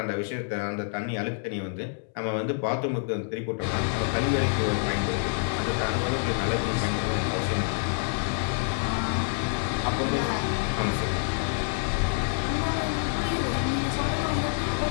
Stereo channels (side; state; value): right; silent; 60 dB below the other